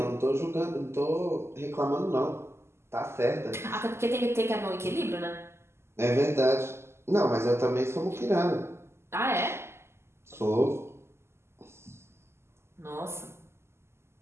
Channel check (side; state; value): left; late; 0.12 ms